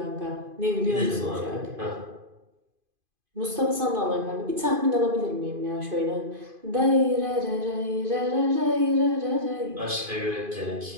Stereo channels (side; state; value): left; late; 2.5 ms